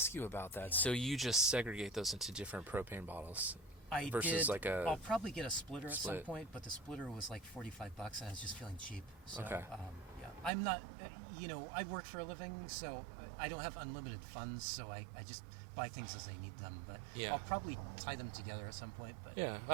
you about that. So you just segregate those into different propane bottles I versus did. like a... I'll probably get a splitter at some split. point, but the splitter was like $45, and I was just feeling cheap. So, Okay. yeah, I'm not. I work for a living, so I don't have unlimited funds. So I just buy things as I need them. But Yeah. I'll probably tie them together at some point. But Yeah,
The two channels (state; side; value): drops out; left; at 10.5 s